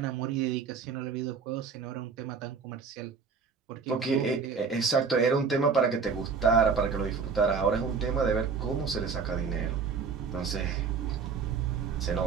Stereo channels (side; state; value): left; quieter; 5.5 dB